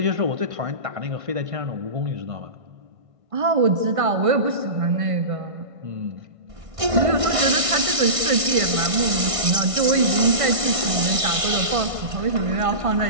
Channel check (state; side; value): late; left; 1.5 ms